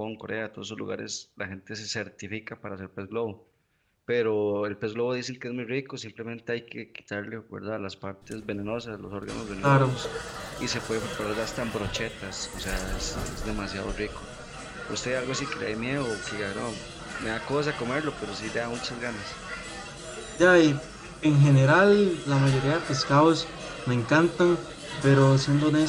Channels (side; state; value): both; identical; correlation 1.00